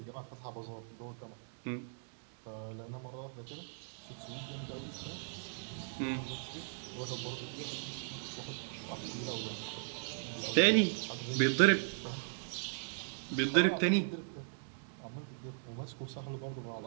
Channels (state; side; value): silent; left; digital silence